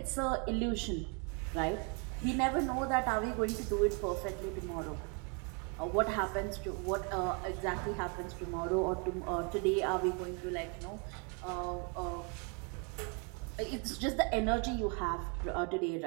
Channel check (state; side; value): quieter; left; 34.1 dB